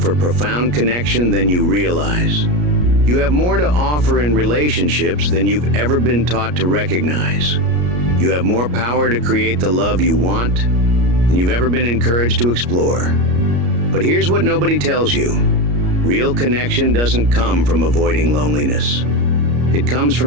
profound connection than you realize. You have more to offer in relationships than you've ever been taught to recognize. You have more power to create the love you want than you've ever been encouraged to explore. But here's what nobody tells you. Real connection doesn't come from avoiding loneliness. It comes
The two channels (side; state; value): left; late; 33 ms